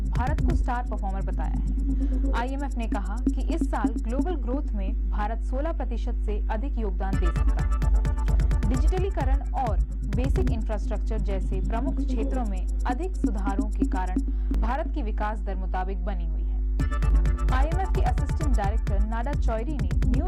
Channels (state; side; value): identical; both; correlation 1.00